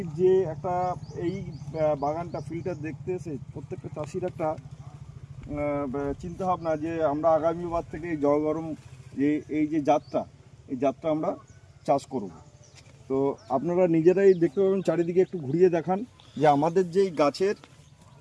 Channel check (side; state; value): both; identical; correlation 1.00